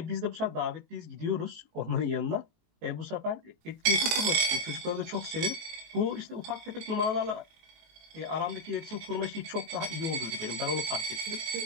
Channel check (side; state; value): left; late; 18 ms